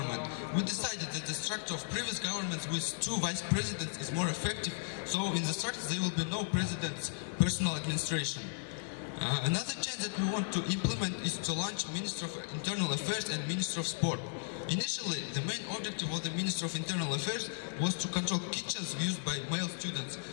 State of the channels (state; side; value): silent; right; digital silence